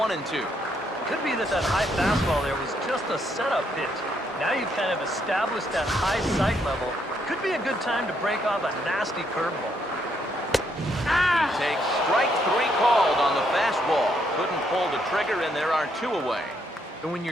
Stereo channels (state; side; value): normal; both; correlation 0.74